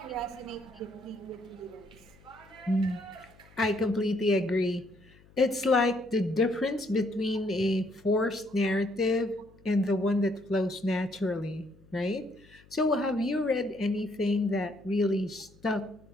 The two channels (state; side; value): noise; left; hum, 26 dB below the sound